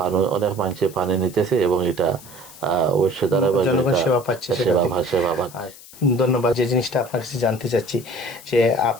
অনেক মানুষে পানি নিতেছে, এবং এটা অবশ্যই দ্বারা সেবা পাচ্ছে। সেবা পাচ্ছে। ধন্যবাদ। যে জিনিসটা আপনার কাছে জানতে চাচ্ছি যে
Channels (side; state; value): left; noise; hiss, 19 dB below the sound